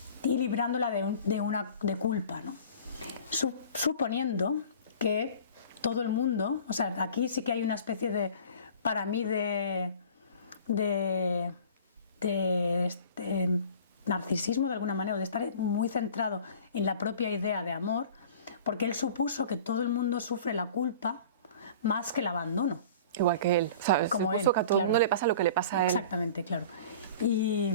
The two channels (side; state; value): both; inverted; correlation -0.44